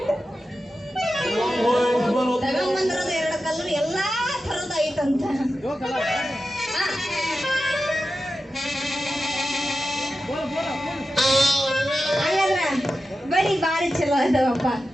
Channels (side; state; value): both; normal; correlation 0.91